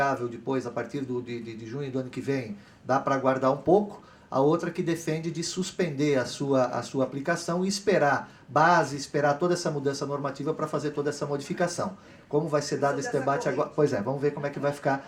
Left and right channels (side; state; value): both; identical; correlation 1.00